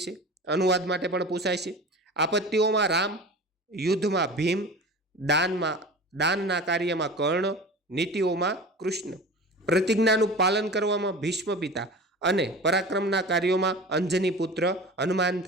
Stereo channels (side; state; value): both; normal; correlation 0.35